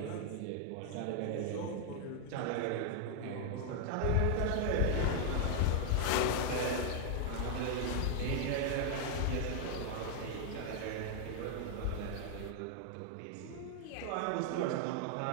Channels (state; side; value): different; both; correlation 0.00